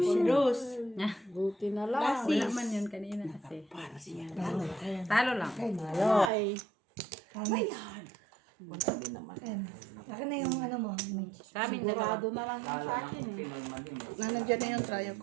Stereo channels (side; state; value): left; drops out; at 6.3 s